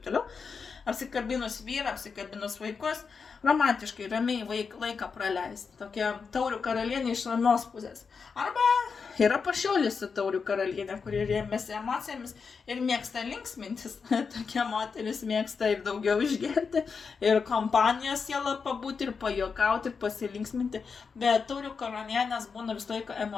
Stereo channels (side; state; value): right; quieter; 5.4 dB